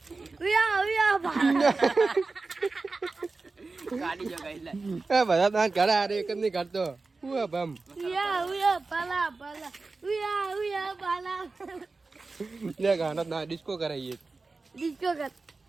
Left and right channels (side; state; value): left; quieter; 3.8 dB